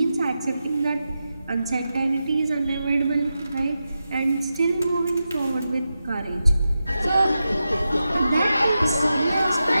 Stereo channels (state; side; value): inverted; both; correlation -0.90